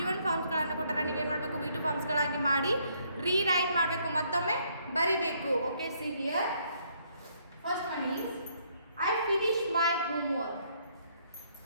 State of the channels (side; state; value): both; inverted; correlation -0.69